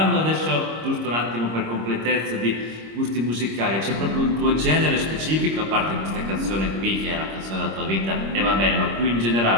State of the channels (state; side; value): late; left; 26 ms